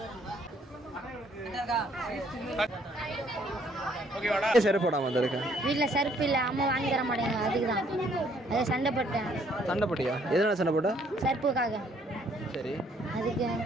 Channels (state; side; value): normal; both; correlation 0.65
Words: செருப்பு போடாம வந்திருக்கேன். வீட்டில் செருப்பு இல்லை, அம்மா வாங்கி தர மாட்டேங்க. அதுக்கு தான் அதை சண்டை போட்டேன். சண்டை போட்டியா? எதனால சண்டை போட்ட? செருப்புக்காக. சரி, அதுக்கு